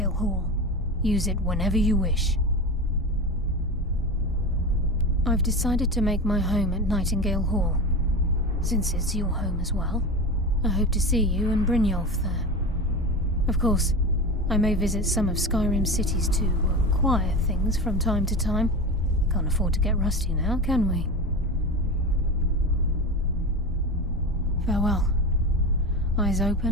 Hall. Use it whenever you wish. I've decided to make my home at Nightingale Hall. Since it's your home as well, I hope to see you and Brynjolf there. Of course, I may visit some of Skyrim's cities to acquire things from time to time. Can't afford to get rusty now, can we? Farewell. Eyes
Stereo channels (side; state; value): both; normal; correlation 0.25